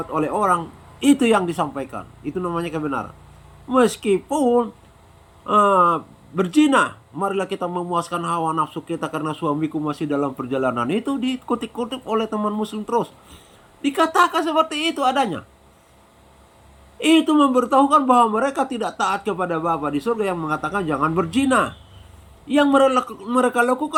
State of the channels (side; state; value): both; identical; correlation 1.00